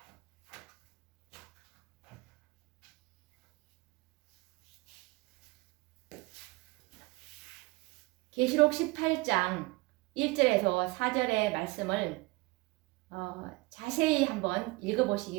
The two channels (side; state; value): left; quieter; 24.0 dB